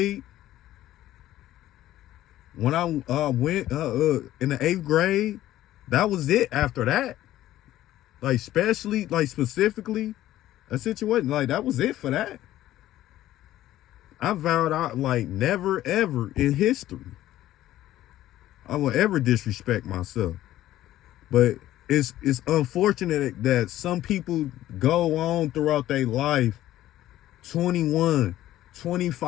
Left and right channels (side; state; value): right; quieter; 14.0 dB